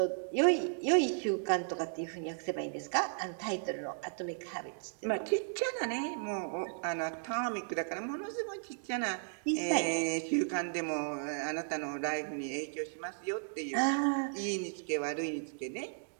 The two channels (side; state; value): left; silent; digital silence